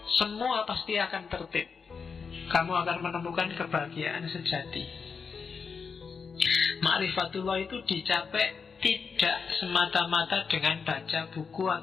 semua pasti akan tertib. Kamu akan menemukan kebahagiaan sejati. Ma'rifatullah itu dicapai tidak semata-mata dengan baca buku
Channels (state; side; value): quieter; right; 5.6 dB